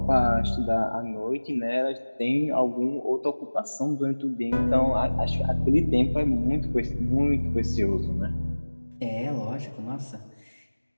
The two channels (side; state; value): both; inverted; correlation -1.00